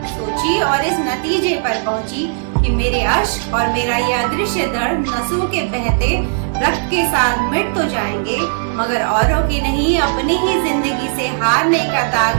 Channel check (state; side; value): silent; left; 60 dB below the other